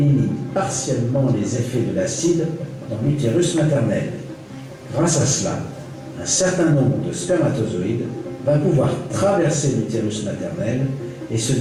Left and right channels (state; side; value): identical; both; correlation 1.00